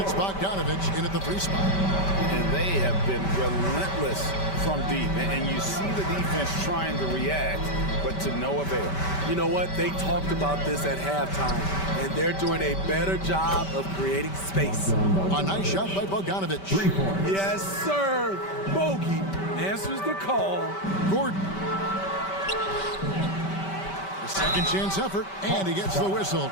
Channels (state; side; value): late; right; 5.2 ms